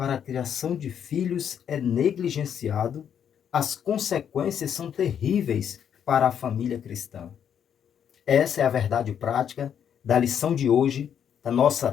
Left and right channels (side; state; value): right; quieter; 8.6 dB